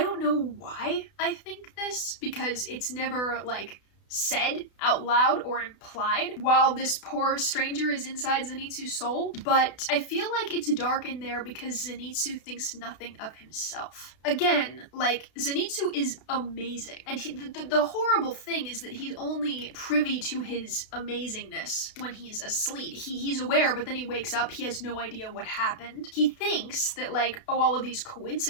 know why I think this, because it's never, like, said out loud or implied while this poor stranger is inside Zenitsu's soul, but I feel like it's dark in there because Zenitsu thinks nothing of himself. Again, like, Zenitsu is amazing, and the horrible thing is that he's only privy to his amazingness when he's asleep. He's aware, but then he wakes up, he has no idea what happened. He thinks that, like, oh, all of these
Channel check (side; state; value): right; late; 32 ms